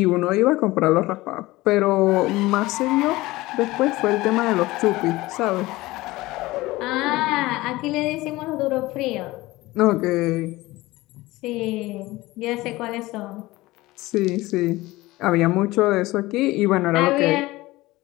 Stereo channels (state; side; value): quieter; right; 19.3 dB